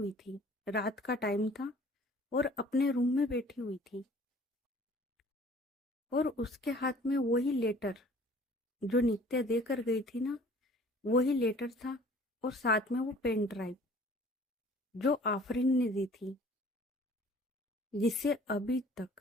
थी। रात का टाइम था और अपने रूम में बैठी हुई थी। और उसके हाथ में वही लेटर जो नित्या देकर गई थी ना, वही लेटर था। और साथ में वो पेन ड्राइव जो आफरीन ने दी थी, जिसे अभी तक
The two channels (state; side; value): normal; both; correlation 0.51